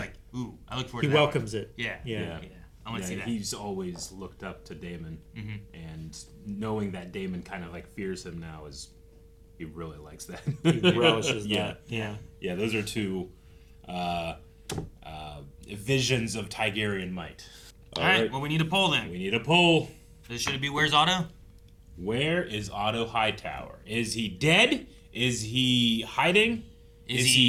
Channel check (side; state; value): both; identical; correlation 1.00